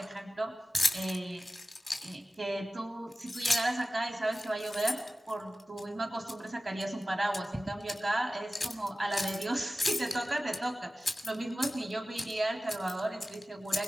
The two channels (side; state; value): both; normal; correlation 0.96